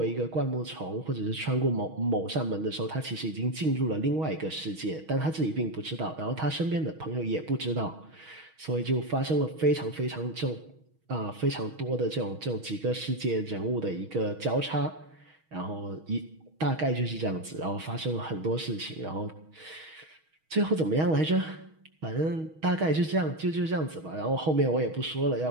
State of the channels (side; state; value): left; late; 6.3 ms